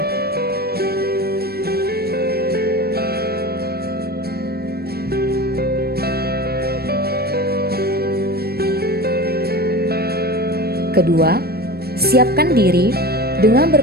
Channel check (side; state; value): left; late; 0.46 ms